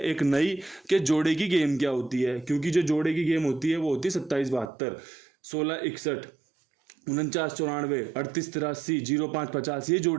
एक नई कि जोड़े की गेम क्या होती है, क्योंकि जो जोड़े की गेम होती है वो होती है 27 72, 16 61, 49 94, 38 83, 05 50, ये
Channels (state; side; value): drops out; left; at 4.7 s